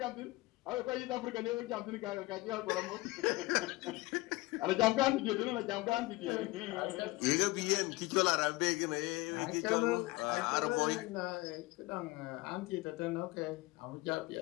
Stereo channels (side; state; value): right; quieter; 21.2 dB